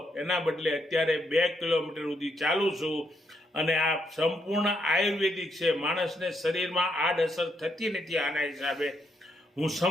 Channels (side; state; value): both; normal; correlation 0.77